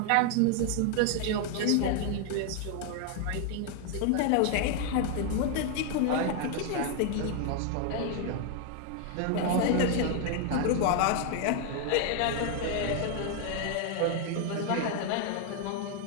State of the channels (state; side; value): different; both; correlation 0.00